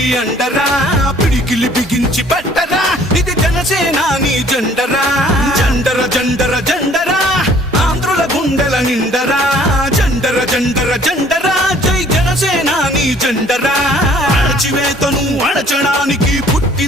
అండరా పిడికిలి బిగించి పట్టరా ఇది జనసేనాని జెండరా జండర జండర జండరా ఆంధ్రుల గుండెల నిండరా జండర జండర జండరా జై జనసేనాని జెండరా అణచివేతను అణచడానికి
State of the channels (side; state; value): both; normal; correlation 0.57